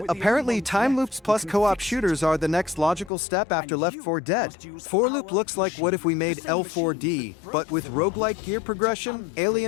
apparently time loops plus co-op shooters are the next logical step after Left 4 Dead. 4-loop looks like what if we made L4D, but with roguelike gear progression,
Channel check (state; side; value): drops out; right; at 3.1 s